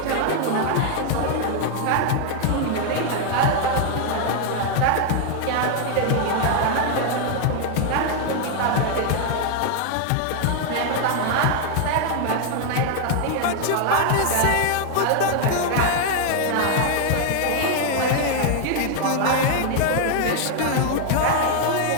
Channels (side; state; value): both; different; correlation 0.00